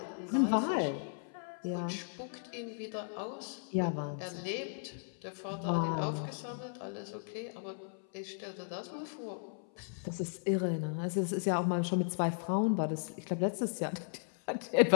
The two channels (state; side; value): silent; right; 54 dB below the other